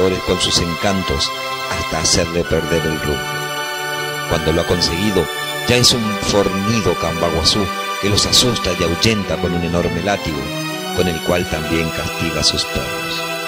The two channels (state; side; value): identical; both; correlation 1.00